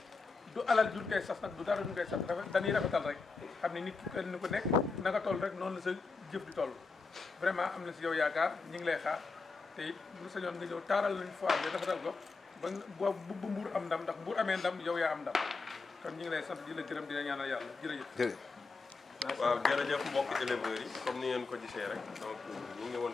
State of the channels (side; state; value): right; quieter; 4.2 dB